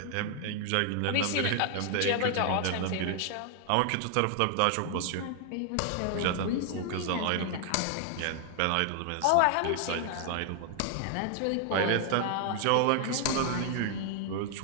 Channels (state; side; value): different; both; correlation 0.00